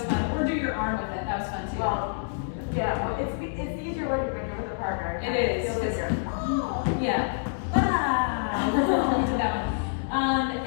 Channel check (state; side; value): silent; right; digital silence